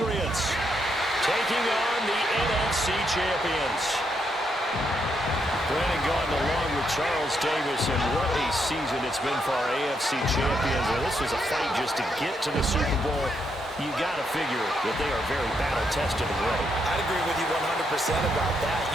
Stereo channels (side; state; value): both; normal; correlation 0.78